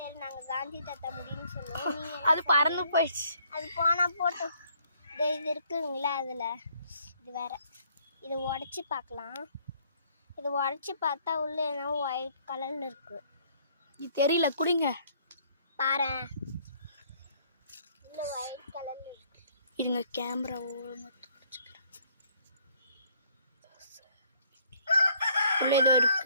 நாங்கள் காந்தி தாத்தா முடின்னு சொல்லுவோம். அது பறந்து போயிடுச்சு. அது போனால் போட்டோம். இது இருக்குங்களா, அதில் இது வேற. இதை உடச்சி பார்க்கலாம். இதை உடச்சி பார்த்தா உள்ள என்ன ஒயிட் கலரில் இருக்கு. இது தெரியல, குடிங்க பாரு, உள்ள ஒயிட் கலரில் இருக்கு. இதுங்க கேமரா ஒழுங்காக உள்ள ஏதோ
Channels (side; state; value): both; inverted; correlation -0.64